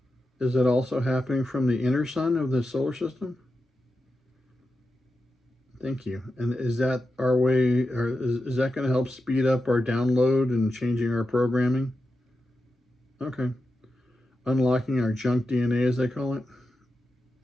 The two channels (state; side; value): normal; both; correlation 0.90